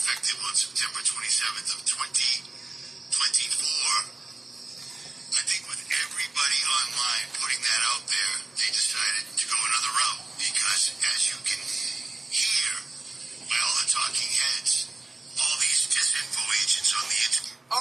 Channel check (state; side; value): quieter; left; 3.0 dB